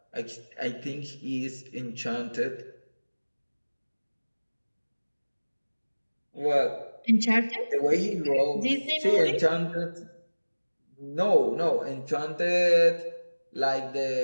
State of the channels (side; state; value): both; inverted; correlation -1.00